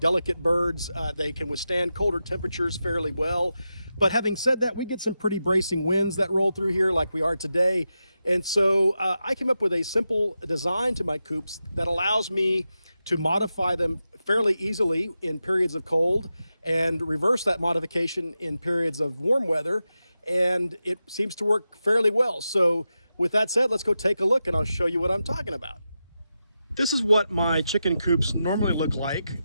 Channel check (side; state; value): both; inverted; correlation -0.90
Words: birds. They can withstand colder temperatures fairly well. But having said that, we get some pretty bracing winds that roll through here like we are today. And so I came up with a simple design to my coops that allows me to modify them fairly easily in periods of cold and reverse that modification in periods of warm weather. And it seems to work fairly well. So with that said, let's go take a look and I'll show you what I'm talking about. This is what my chicken coops normally look like.